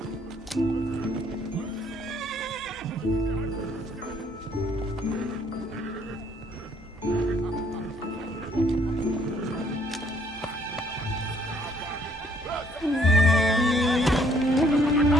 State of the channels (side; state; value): both; normal; correlation 0.65